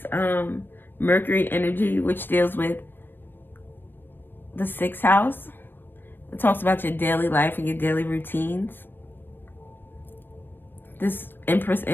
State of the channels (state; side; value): late; right; 0.096 ms